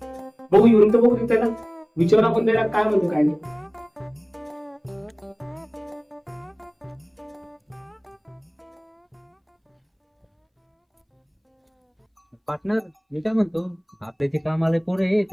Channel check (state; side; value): identical; both; correlation 1.00